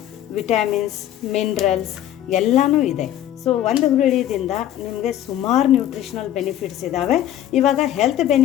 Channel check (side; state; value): right; quieter; 12.0 dB